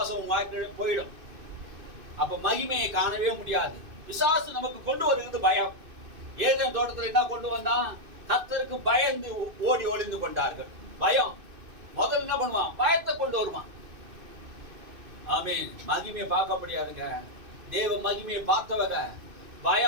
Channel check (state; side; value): late; left; 2.6 ms